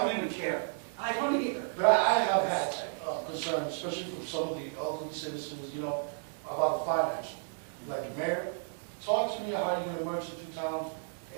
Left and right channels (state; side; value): silent; left; 56 dB below the other